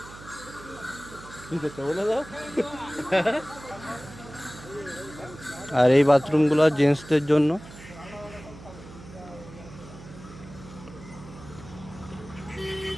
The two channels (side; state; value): right; noise; hum, 17 dB below the sound